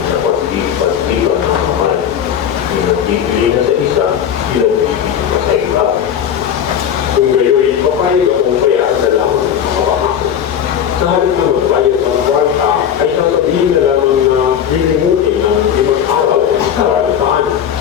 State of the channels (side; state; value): right; quieter; 9.0 dB